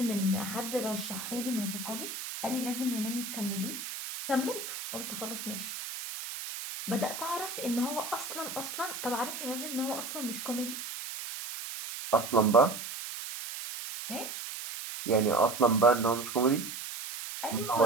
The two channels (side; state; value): right; noise; hiss, 7 dB below the sound